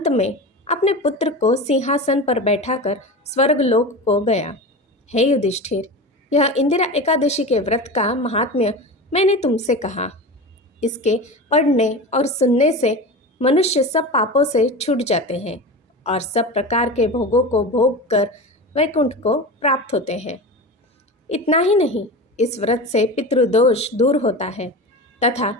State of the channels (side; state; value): both; normal; correlation 0.28